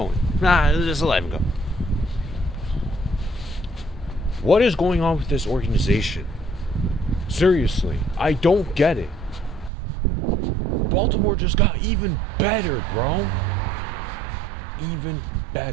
Just let him go. What is going on with this organization? Seriously, I don't get it. Baltimore just got even better, bro. Even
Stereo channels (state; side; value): drops out; left; at 9.7 s